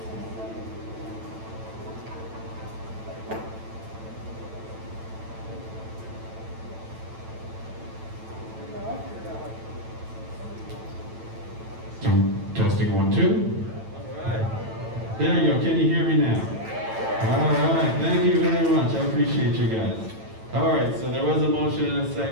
Testing 1, 2. All right. There you go. Can you hear me now? All right. Thank you very much. I appreciate you guys. All right. So there was a motion and a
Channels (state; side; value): late; left; 9.0 ms